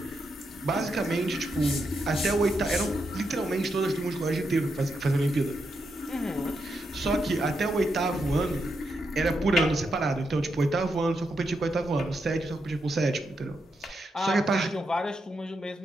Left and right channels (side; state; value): both; normal; correlation 0.83